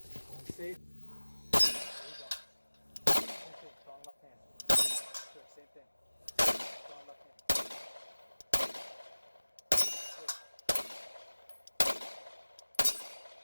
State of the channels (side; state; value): both; inverted; correlation -1.00